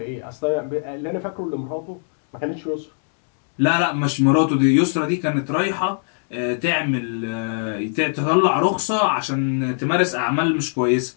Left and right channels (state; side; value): silent; right; digital silence